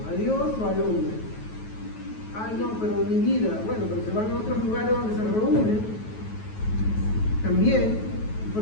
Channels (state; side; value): late; right; 9.3 ms